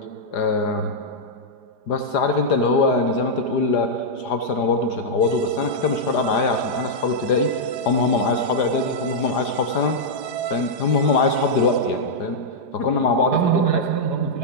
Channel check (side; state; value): right; late; 4.9 ms